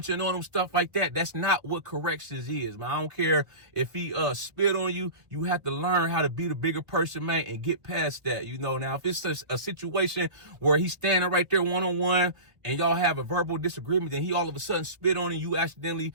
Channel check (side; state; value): left; late; 1.2 ms